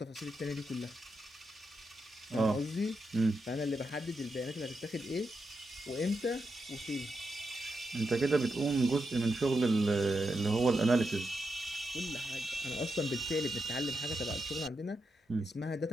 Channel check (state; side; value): normal; both; correlation 0.85